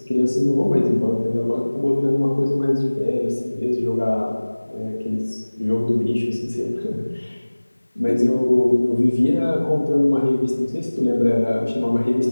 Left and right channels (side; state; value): both; inverted; correlation -1.00